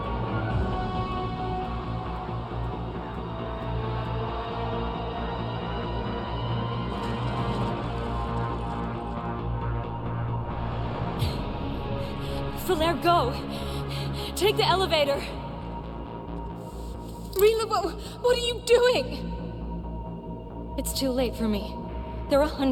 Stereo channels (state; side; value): identical; both; correlation 1.00